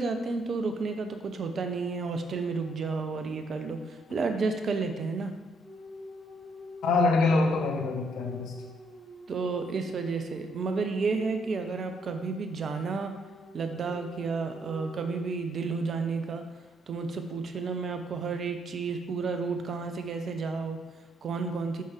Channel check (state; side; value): normal; both; correlation 0.71